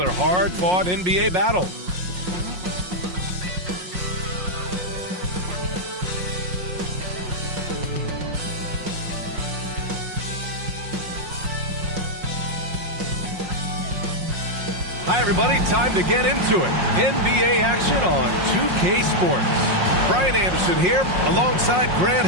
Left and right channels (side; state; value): left; late; 5.5 ms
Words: hard-fought NBA battle. Hi, everybody. Time to get into it. NBA action on 2K Sports. Brian Anderson here, alongside Grant